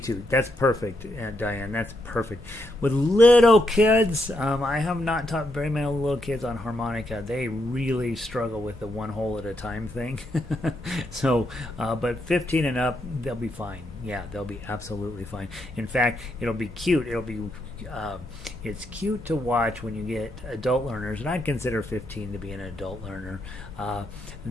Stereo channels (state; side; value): normal; both; correlation 0.79